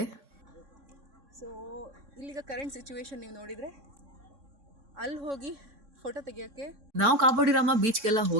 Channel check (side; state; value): left; late; 3.6 ms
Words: ಸೊ ಇಲ್ಲಿಗ ಕರೆಂಟ್ ಸಿಚುವೇಶನ್ ನೀವು ನೋಡಿದರೆ ಅಲ್ಲಿ ಹೋಗಿ ಫೋಟೋ ತೆಗಿಯೋಕ್ಕೆ ನಾವು ಕಾಬೋಡಿ ರಾಮ ಬೀಚ್ಗೆಲ್ಲ